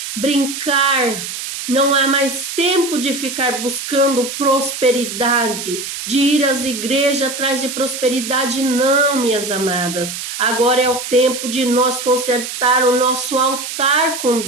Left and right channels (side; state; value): right; noise; hiss, 7 dB below the sound